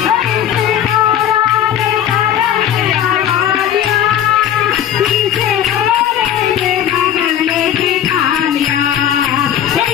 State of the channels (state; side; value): quieter; right; 10.3 dB